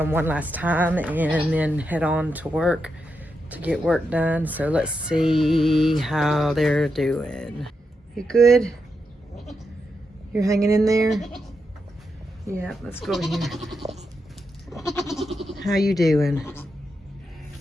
one last time and then head on to work to get work done. So let's see how they're doing. You good? You're hanging in there? Yeah, let's go over here. How you doing?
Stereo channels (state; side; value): normal; both; correlation 0.85